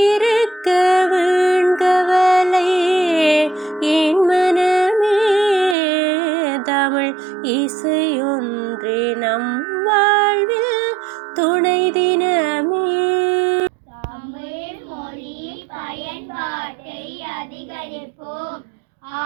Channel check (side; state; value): left; drops out; at 5.8 s